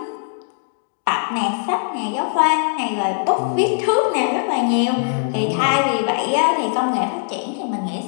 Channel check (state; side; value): silent; right; digital silence